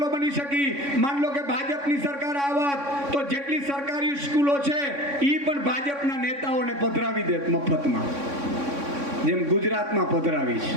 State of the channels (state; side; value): late; left; 3.6 ms